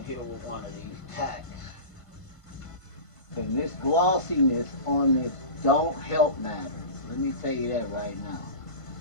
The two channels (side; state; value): right; late; 1.5 ms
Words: here with one of these tacks. And this glossiness on this don't help matters. Let me tell you that right now.